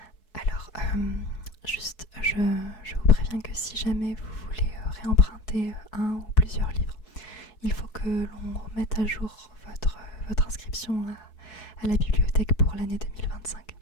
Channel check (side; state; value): right; late; 4.7 ms